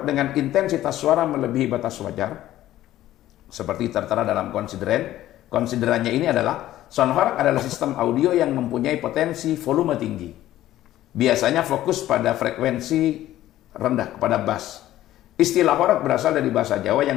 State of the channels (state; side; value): quieter; right; 14.0 dB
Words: dengan intensitas suara melebihi batas wajar, seperti tertera dalam konsideran. Konsiderannya ini adalah son horeg adalah sistem audio yang mempunyai potensi volume tinggi. Biasanya fokus pada frekuensi rendah, kepada bass. Istilah horeg berasal dari bahasa Jawa